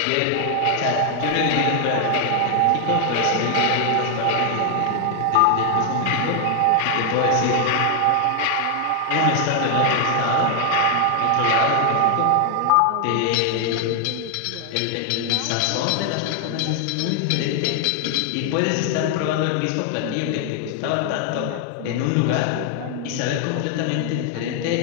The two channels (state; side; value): different; both; correlation 0.00